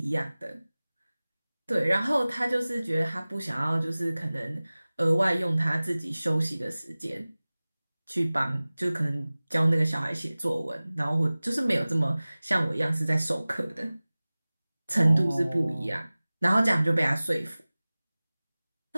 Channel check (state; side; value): inverted; both; correlation -0.99